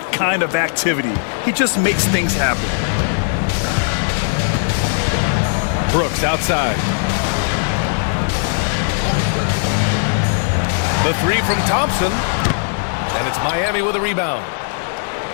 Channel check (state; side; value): silent; right; digital silence